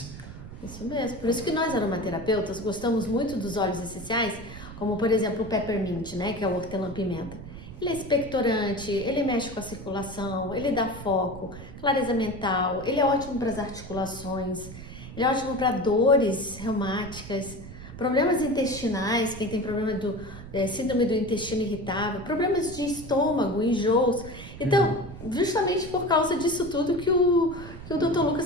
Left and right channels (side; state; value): right; noise; rumble, 13 dB below the sound